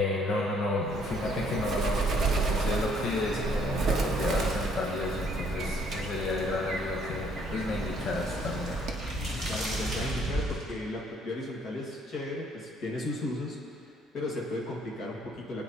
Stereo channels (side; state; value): both; normal; correlation 0.64